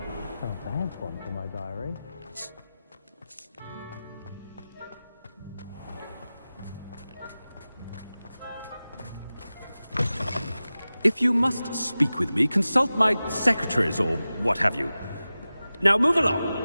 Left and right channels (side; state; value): both; inverted; correlation -0.96